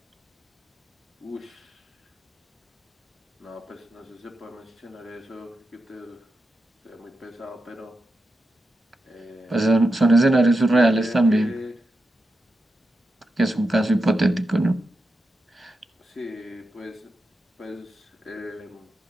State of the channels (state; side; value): normal; both; correlation 0.88